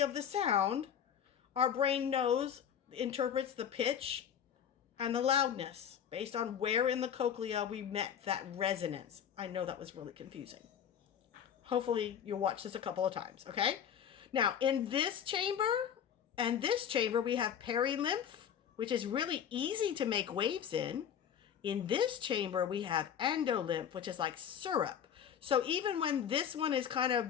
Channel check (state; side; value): quieter; right; 8.8 dB